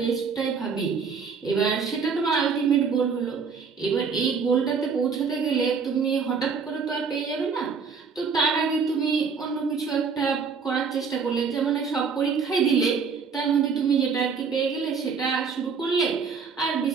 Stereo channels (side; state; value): left; quieter; 5.6 dB